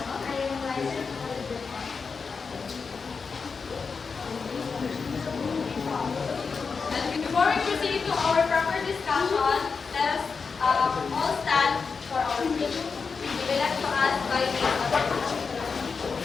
I am Liza Calderon. And before we proceed to our proper discussion, let us all stand for our pledge. We will like to ask by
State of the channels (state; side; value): quieter; right; 5.1 dB